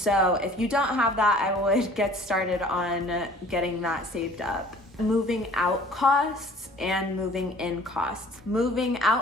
if you don't have that, I would get started on getting that saved up. Moving out costs and moving in costs. Moving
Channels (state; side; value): normal; both; correlation 0.51